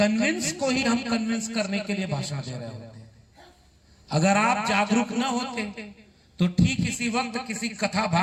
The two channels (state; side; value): identical; both; correlation 1.00